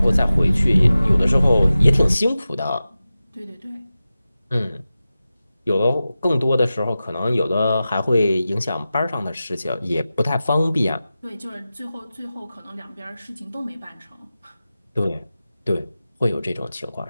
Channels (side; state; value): both; inverted; correlation -0.94